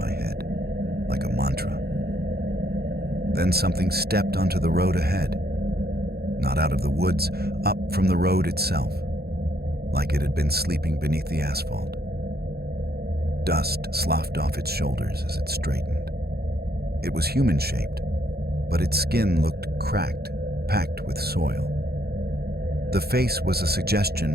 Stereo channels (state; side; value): late; left; 0.46 ms